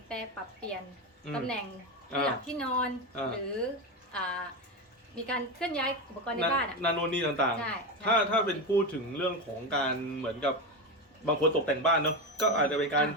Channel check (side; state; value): both; normal; correlation 0.16